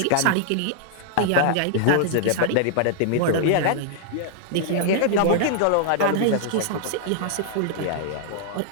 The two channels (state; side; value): different; both; correlation -0.01